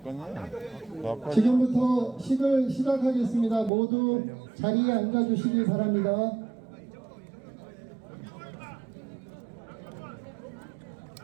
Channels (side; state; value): left; drops out; at 3.7 s